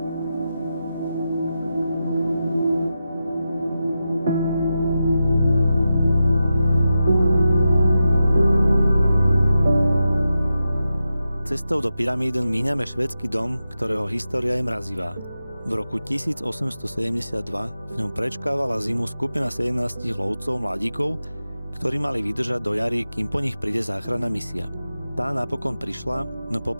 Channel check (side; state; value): both; inverted; correlation -0.91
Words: Cestou do Pyramiden míňame švédsky dom, ktorého história je mrazivá. V roku 1872 v ňom prečkávala zimu skupina 17 lovcov mladíkov, ktorí mali vydržať do jary, kým po nich príde záchranná misia. Tá napokon prišla, no po